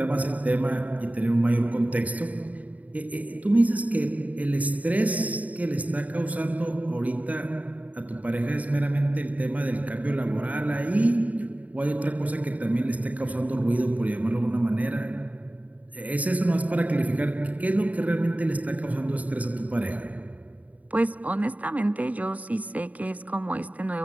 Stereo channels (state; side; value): late; left; 0.071 ms